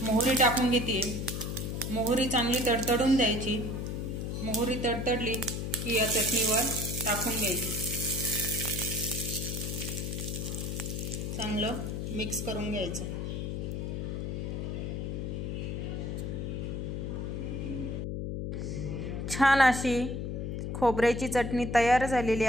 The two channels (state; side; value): noise; left; hum, 3 dB below the sound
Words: मोहरी टाकून घेते। मोहरी चांगली तडतडून द्यायची। मोहरी तडतडली की या चटणीवर टाकून घ्यायची, चांगलं मिक्स करून घ्यायचं। छान अशी खोबऱ्याची चटणी तयार झालेली